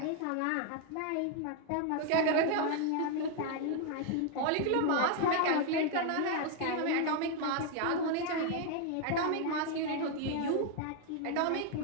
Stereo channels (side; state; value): both; different; correlation 0.00